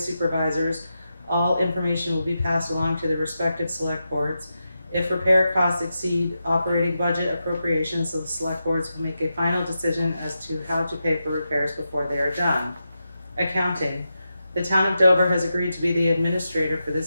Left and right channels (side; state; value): both; inverted; correlation -0.88